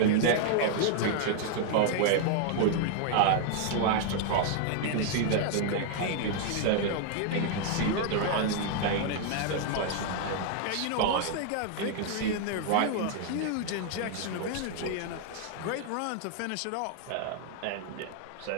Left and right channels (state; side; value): different; both; correlation 0.00